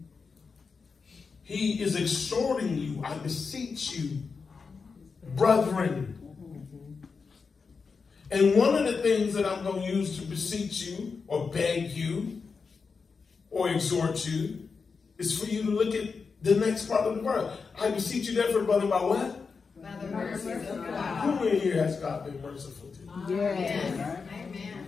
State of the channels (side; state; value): right; quieter; 5.0 dB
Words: He is exhorting you. I beseech you, brethren. And one of the things that I'm going to use to beseech you or beg you or exhort you is for you to look at the next part of the verse. I beseech you therefore, brother, by what? By the mercy of God. Who in here has God been merciful to? Yes.